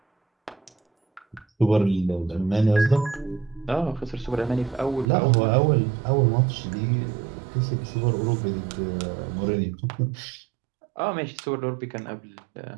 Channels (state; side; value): drops out; left; at 5.1 s